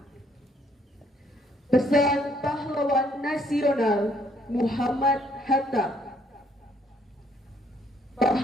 Pesan pahlawan nasional Muhammad Hatta.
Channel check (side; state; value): both; normal; correlation 0.67